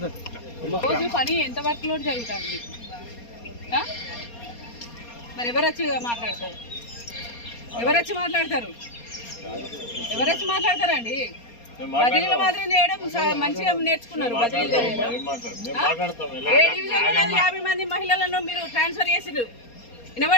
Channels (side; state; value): right; late; 4.3 ms